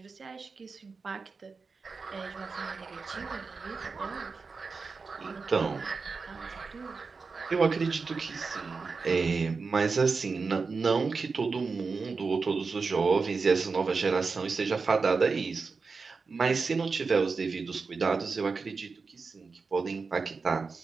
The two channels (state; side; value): quieter; left; 4.6 dB